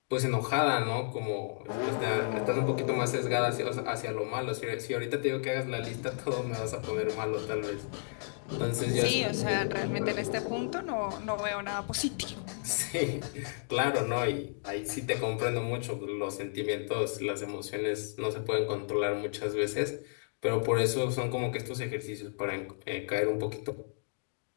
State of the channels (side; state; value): right; silent; digital silence